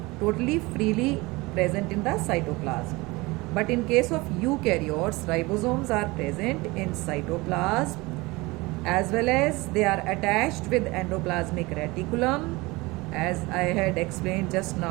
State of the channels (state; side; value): quieter; left; 22.9 dB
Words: totally freely present in the cytoplasm. But in case of eukaryotes, ribosomes are present in cytoplasm as well as they are attached with endoplasmic reticulum, as I had explained just